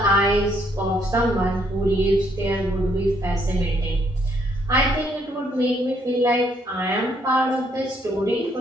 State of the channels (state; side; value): normal; both; correlation 0.70